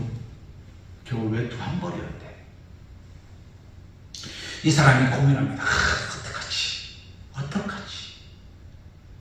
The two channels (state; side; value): identical; both; correlation 1.00